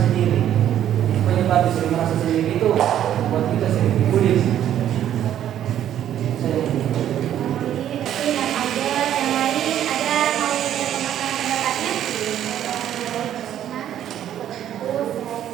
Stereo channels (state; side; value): quieter; left; 10.9 dB